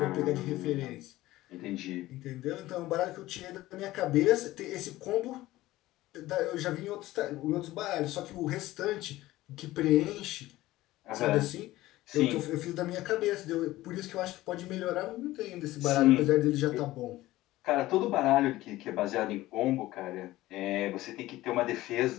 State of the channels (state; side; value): quieter; right; 16.8 dB